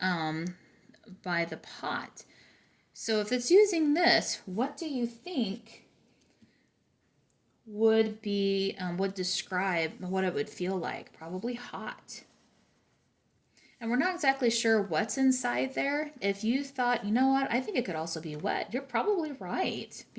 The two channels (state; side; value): identical; both; correlation 1.00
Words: by the pot. So if it's using this, what do you think would describe what it would feel like? Probably hot. And we're not exactly sure what's inside there. If you thought, you know what, I think it could also be wet, you're probably right,